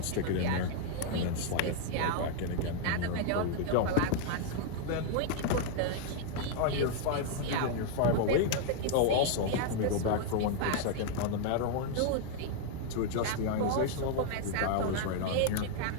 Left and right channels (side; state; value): both; different; correlation 0.00